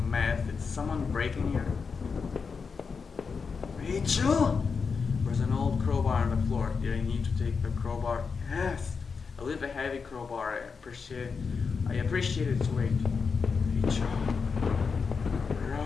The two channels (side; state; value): right; quieter; 5.3 dB